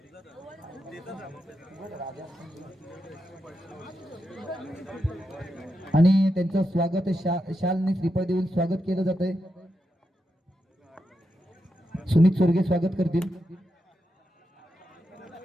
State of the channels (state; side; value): normal; both; correlation 0.86